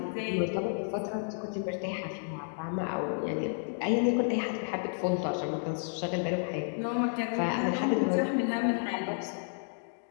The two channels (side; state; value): right; silent; digital silence